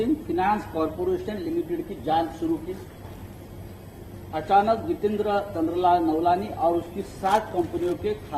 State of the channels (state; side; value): identical; both; correlation 1.00